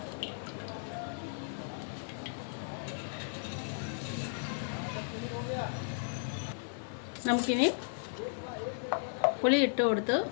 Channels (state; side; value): silent; right; digital silence